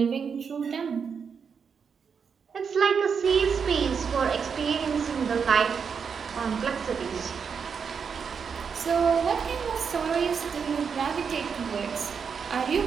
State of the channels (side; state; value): left; quieter; 6.3 dB